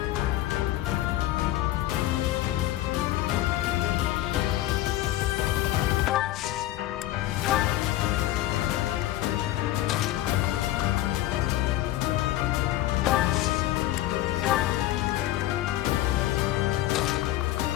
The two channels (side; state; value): right; quieter; 14.9 dB